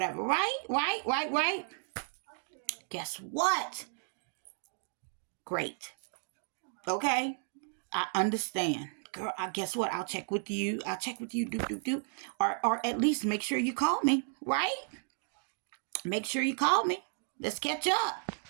right? Guess what? Great. Okay? I understand. Girl, I guess what? I'll check with you. I'll check with you. Do. Or at least make sure you call me, right? Make sure you call me. Let's catch up,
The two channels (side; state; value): left; silent; 55 dB below the other